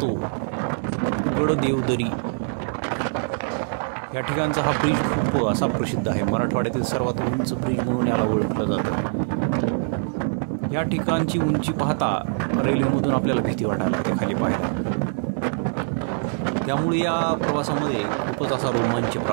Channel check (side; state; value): left; silent; digital silence